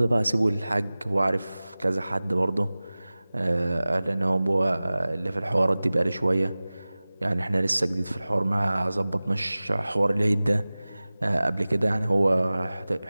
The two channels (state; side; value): inverted; both; correlation -0.98